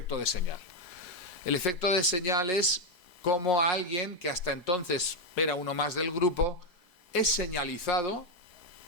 de señal. El efecto de señal es como a alguien que hasta entonces era uno más del grupo es señalizado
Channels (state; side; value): late; right; 4.7 ms